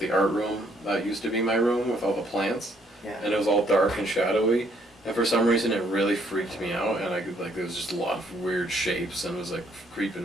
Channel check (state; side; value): normal; both; correlation 0.68